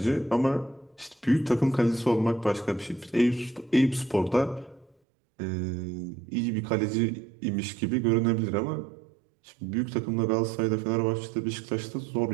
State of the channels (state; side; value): drops out; left; at 5.0 s